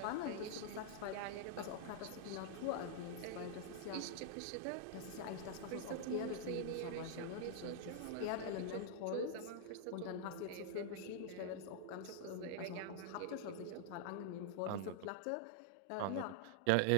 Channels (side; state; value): both; different; correlation -0.01